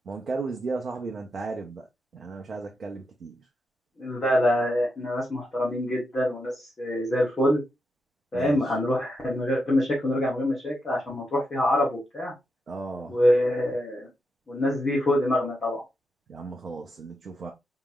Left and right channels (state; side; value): normal; both; correlation 0.85